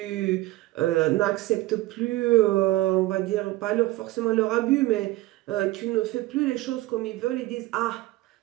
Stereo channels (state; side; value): quieter; left; 18.2 dB